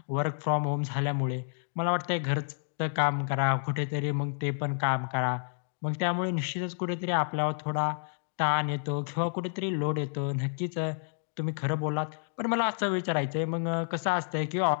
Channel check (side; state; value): right; silent; digital silence